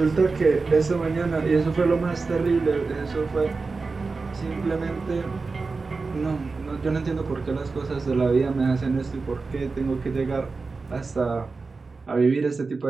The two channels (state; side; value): quieter; left; 4.2 dB